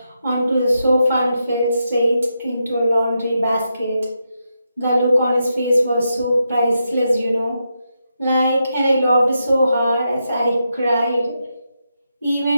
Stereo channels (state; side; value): inverted; both; correlation -0.85